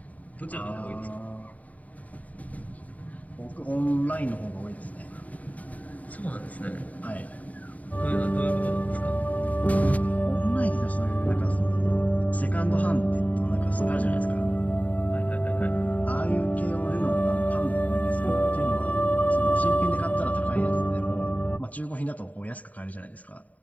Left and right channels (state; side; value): late; right; 0.072 ms